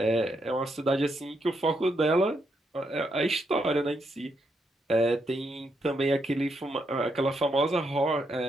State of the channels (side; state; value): both; normal; correlation 0.79